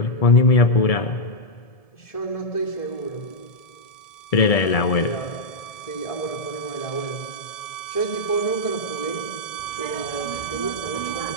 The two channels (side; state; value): right; late; 1.7 ms